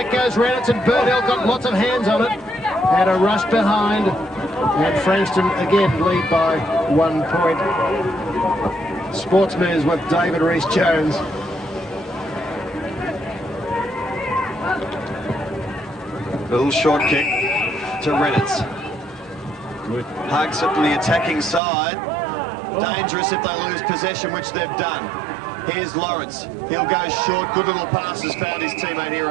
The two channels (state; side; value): drops out; left; at 21.6 s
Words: goes Reynolds, and Burnell got lots of hands on it. And a rush behind. And Frankston again lead by 1 point. Sports News with David Rees-Jones. Little short kick to Reynolds. Hugs it from the attacking side. Dangerous if they lose possession, which they've done. Here's Lawrence. He'll go short. Good little passes. Found his teammate here,